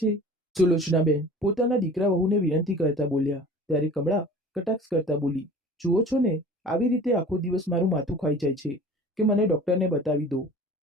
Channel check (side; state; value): both; normal; correlation 0.43